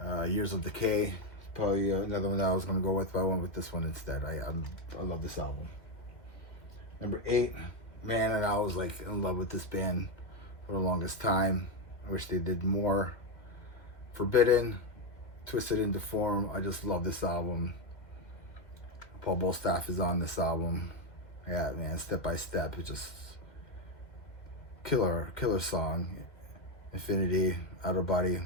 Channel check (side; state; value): right; late; 2.0 ms